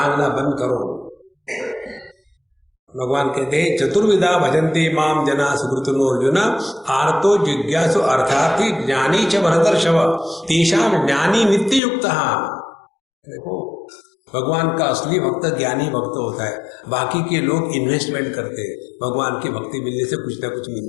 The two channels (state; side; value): drops out; right; at 11.8 s